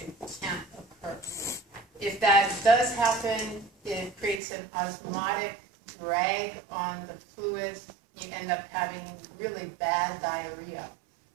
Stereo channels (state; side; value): drops out; left; at 4.4 s